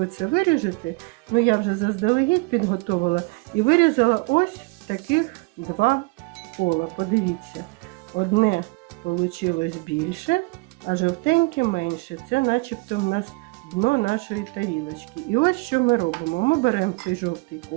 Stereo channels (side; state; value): left; quieter; 26.6 dB